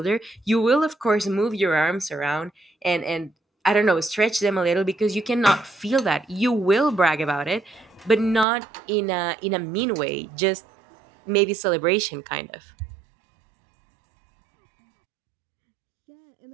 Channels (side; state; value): left; drops out; at 8.5 s